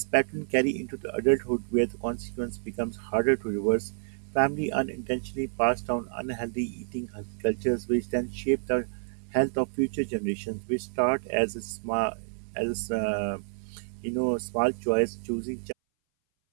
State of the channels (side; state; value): left; silent; 59 dB below the other